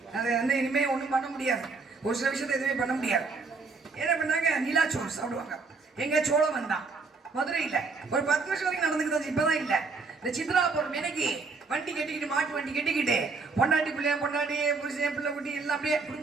அது வந்து இனிமே ஒன்றும் பண்ண முடியாது. ஒரு சில விஷயத்தை எதுவுமே பண்ண முடியாது. என்ன பண்ணாங்க, நிலாச்சோறு சாப்பிடுவாங்க. எங்க சோழம் வந்தான் மதுரையில் ஒரு 10 வருஷம் வரைக்கும் நடந்துக்கிட்டு, இப்பதான் இல்லை. இந்த சித்ரா பௌர்ணமி அன்னைக்கு வண்டி கட்டிக்கிட்டு, மாட்டு வண்டி கட்டிக்கிட்டு, பொண்டாட்டி புருஷன் பிள்ளை குட்டி எல்லாம் அப்படியே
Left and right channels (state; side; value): quieter; left; 4.3 dB